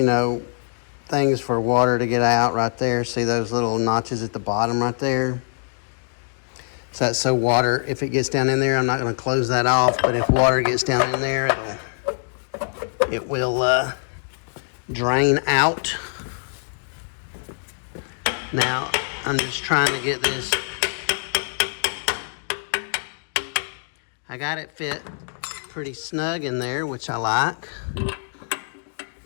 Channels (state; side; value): silent; right; digital silence